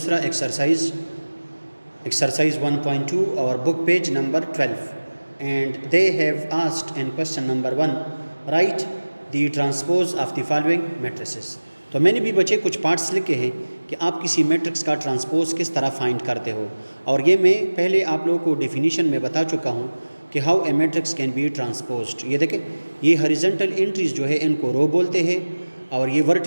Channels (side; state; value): both; inverted; correlation -1.00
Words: एक्सरसाइज 1.2 और book page number 12 and they have asked in question number 1 right the transpose of the following matrices. तो मैंने भी बच्चे कुछ पार्ट्स लिखे हैं कि आप किसी मैट्रिक्स का ट्रांसपोज किस तरह फाइंड करते हो, और ये मैं पहले आप लोगों को डेफिनेशन में बता चुका हूँ कि how a matrix can be transposed. ये देखें, ये हॉरिजॉन्टल एंट्रीज जो है इनको रो बोलते हैं और ये